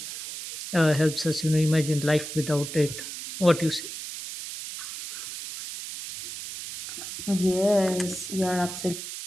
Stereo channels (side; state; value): right; noise; hiss, 9 dB below the sound